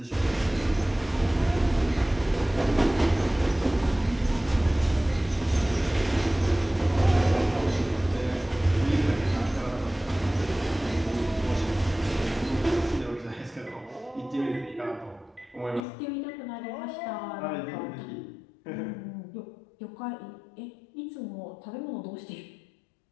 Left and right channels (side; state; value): right; drops out; at 15.9 s